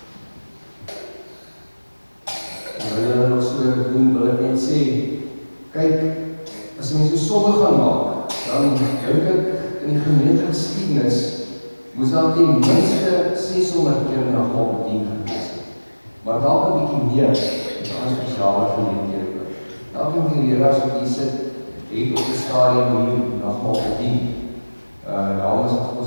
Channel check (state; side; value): inverted; both; correlation -1.00